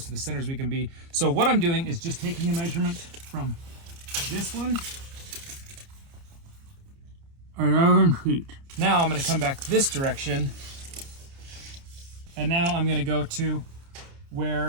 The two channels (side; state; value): left; late; 29 ms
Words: to the center as we can be. So what I'm doing is just taking a measurement from this one, 11 feet. Now I'm going to come back this direction, and now I'm going to go to